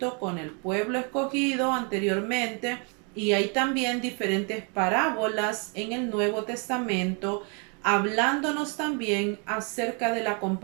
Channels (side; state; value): left; quieter; 36.0 dB